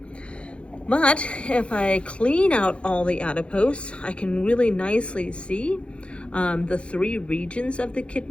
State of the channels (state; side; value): late; right; 0.059 ms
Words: But if I clean out all the adipose, I can really nicely see the 3 regions of the